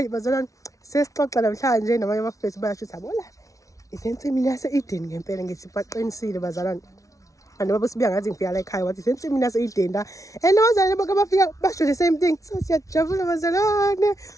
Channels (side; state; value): right; late; 0.16 ms